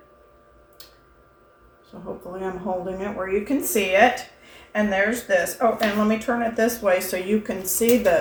So hopefully I'm holding it where you can see it. And there's this. Oh, and let me turn it this way so you can see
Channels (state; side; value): identical; both; correlation 1.00